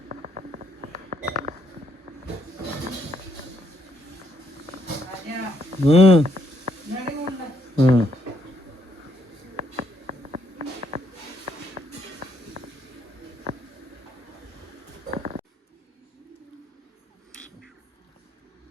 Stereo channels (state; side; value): normal; both; correlation 0.74